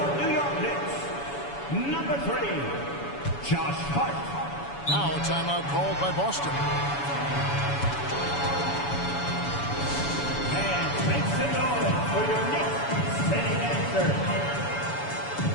New York Knicks, number 3, Josh Hart. Now a timeout called by Boston. And make some noise for your Knicks setting answer.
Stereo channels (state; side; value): late; right; 7.1 ms